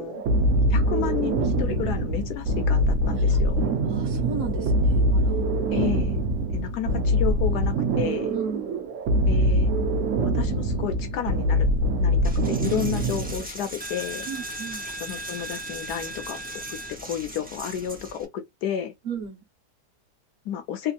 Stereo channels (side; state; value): both; normal; correlation 0.03